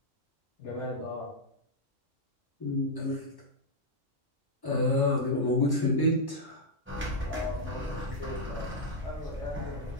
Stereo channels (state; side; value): normal; both; correlation -0.04